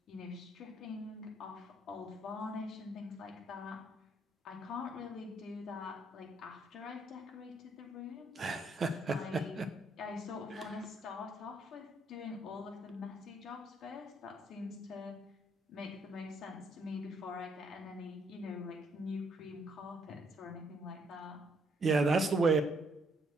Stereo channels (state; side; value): normal; both; correlation 0.70